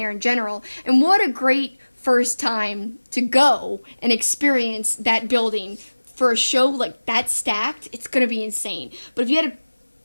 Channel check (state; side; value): inverted; both; correlation -1.00